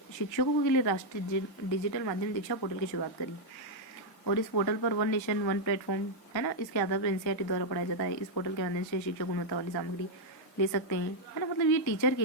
शिक्षकों के लिए राष्ट्रीय डिजिटल माध्यम दीक्षा पोर्टल की शुरुआत करी। और इस पोर्टल पर वन नेशन वन प्लेटफॉर्म, है ना, इसके आधार पर एनसीईआरटी द्वारा पढ़ाया जाता है। इस पोर्टल के माध्यम से शिक्षक गुणवत्ता वाली सामग्री ले सकते हैं, है ना। मतलब ये टीचर के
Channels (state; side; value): late; right; 1.3 ms